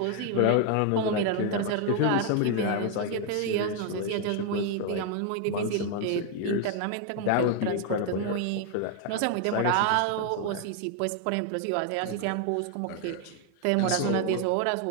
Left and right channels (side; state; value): both; different; correlation 0.00